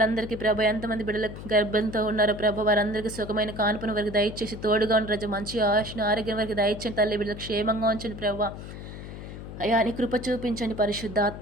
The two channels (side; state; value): left; noise; hum, 11 dB below the sound